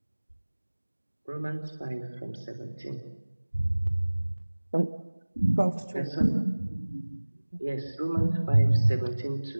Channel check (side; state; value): both; inverted; correlation -1.00